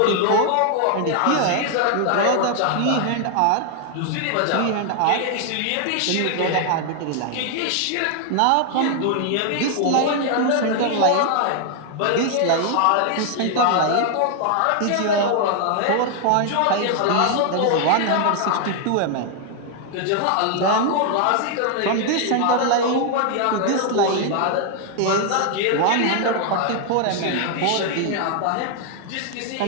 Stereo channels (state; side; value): different; both; correlation 0.00